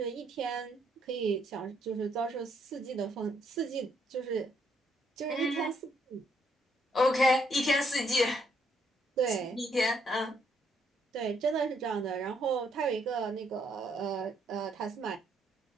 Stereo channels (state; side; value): normal; both; correlation 0.72